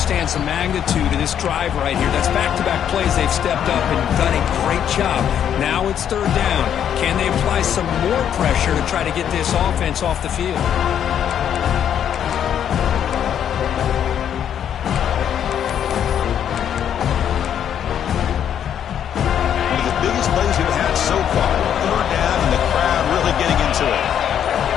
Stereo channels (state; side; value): quieter; right; 9.3 dB